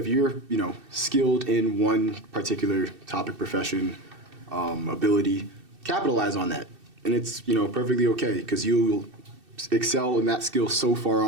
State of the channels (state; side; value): late; left; 2.6 ms